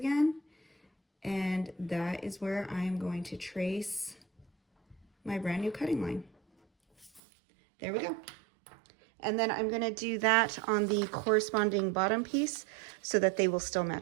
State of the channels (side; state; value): left; drops out; at 7.2 s